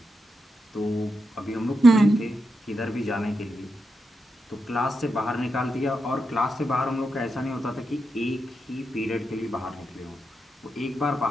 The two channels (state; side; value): normal; both; correlation 0.86